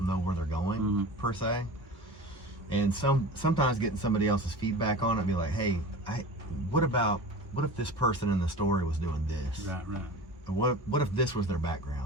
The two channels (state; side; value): normal; both; correlation 0.35